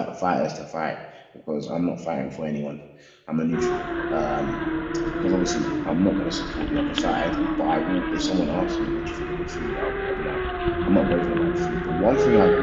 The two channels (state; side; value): identical; both; correlation 1.00